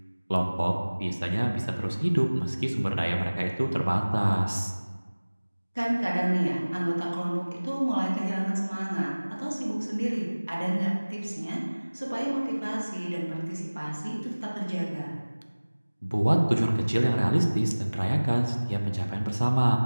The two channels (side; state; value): both; inverted; correlation -1.00